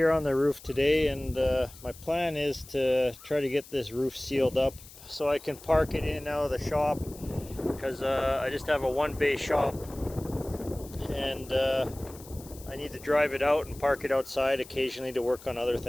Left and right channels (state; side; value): noise; left; hiss, 19 dB below the sound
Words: on the roof today, and my plan is to try to get this roof sealed up so I can park it in and out of the shop, because I just have a one-bay shop, and I need to drive it out and park it outside occasionally to work on other